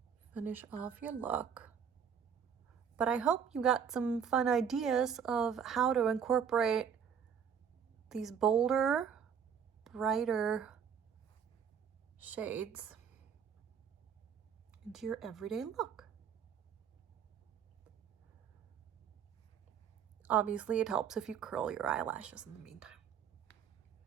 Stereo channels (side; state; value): left; quieter; 7.4 dB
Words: finish off your look. But I hope you got some fun ideas of how to incorporate these bolder, brighter shades into your everyday look. Obviously, it helps if you curl your eyelashes in the meantime.